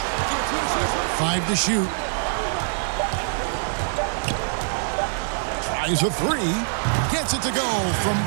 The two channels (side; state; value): left; silent; digital silence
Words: 5 to shoot. Tries a 3. Gets it to go from